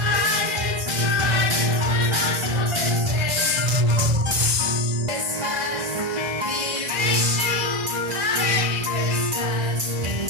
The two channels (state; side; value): late; left; 2.0 ms